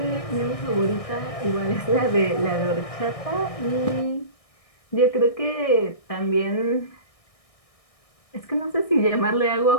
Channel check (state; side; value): late; right; 1.6 ms